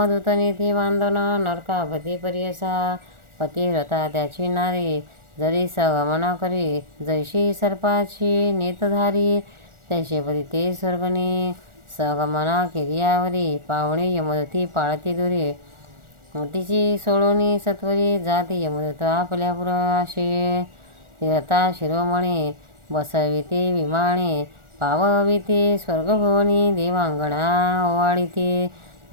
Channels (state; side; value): late; left; 1.4 ms